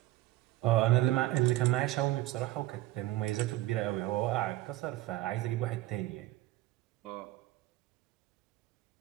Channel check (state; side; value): quieter; left; 16.5 dB